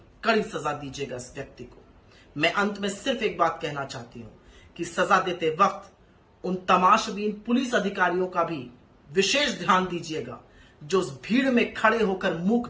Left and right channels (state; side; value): identical; both; correlation 1.00